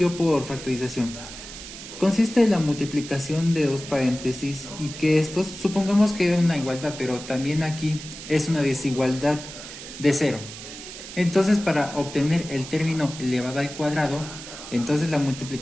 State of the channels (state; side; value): noise; right; hiss, 12 dB below the sound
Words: por factorización. Consiste en la multiplicación de dos paréntesis y que estos, supongamos que es una igualdad, pero también aquí es una desigualdad de 0. Entonces, para obtener el término elevado al cuadrado, entonces la